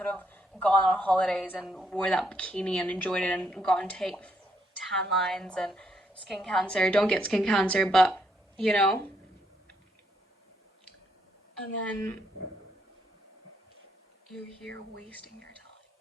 have gone on holidays and wore that bikini and enjoyed it and gotten tan lines and skin cancer. Don't get skin cancer, but you know. And then you're here wasting your time.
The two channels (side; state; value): both; normal; correlation 0.75